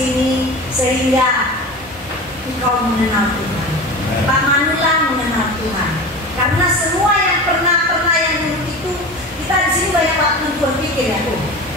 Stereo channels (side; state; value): both; normal; correlation 0.31